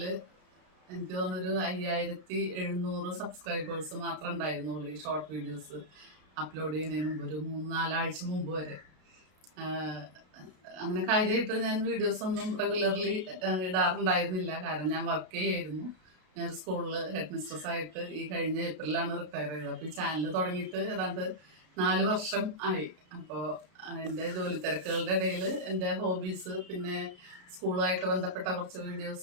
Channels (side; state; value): left; late; 33 ms